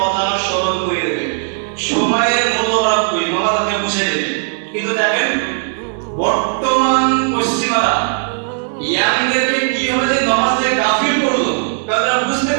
স্মরণ করে দেবে, সময়ের মূল্যবান করে নামাজ আপনাকে বুঝিয়ে দেবে। কিন্তু দেখেন বর্তমান পশ্চিমারা ইয়াংদেরকে কিভাবে যে নামাজে গাফিল করলো, তারা বুঝতে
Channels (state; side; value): silent; left; 57 dB below the other